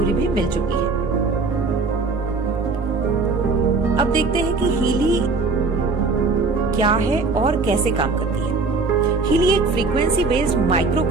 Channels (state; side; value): quieter; left; 4.0 dB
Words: भी मिल चुकी है। अब देखते हैं कि हीली क्या है और कैसे काम करती है। हीली एक frequency based micro